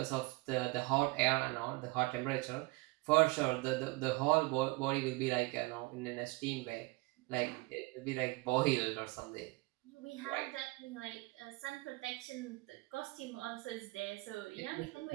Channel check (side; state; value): left; quieter; 24.6 dB